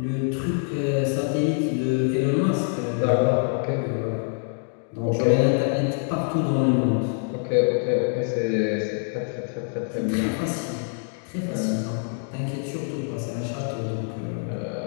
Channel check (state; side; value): silent; right; 62 dB below the other